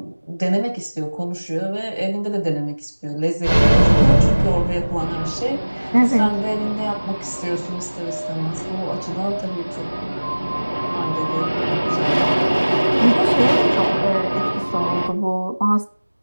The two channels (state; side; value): inverted; both; correlation -1.00